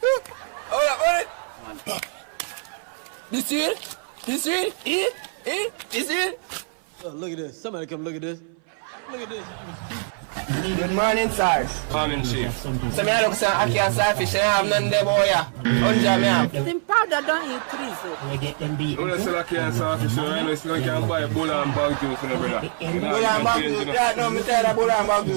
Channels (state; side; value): silent; left; 59 dB below the other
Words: Hold it! This here? This here? This here? Oh, look at this. Somebody come look at this. Look at this. Good morning, sir. Morning, Chief. So I look at I can't selfish, I have none there, boy. Unja me have. Them powder don't increase it. We get them beat. You say I can't selfish, so I know you can buy a bull and bag juice, brother. Bull and bag juice, yeah, no, me tell you bull and bag